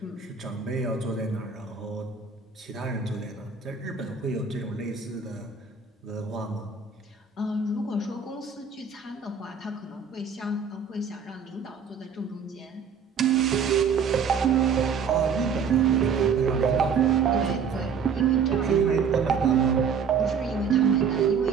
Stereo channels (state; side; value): quieter; left; 6.2 dB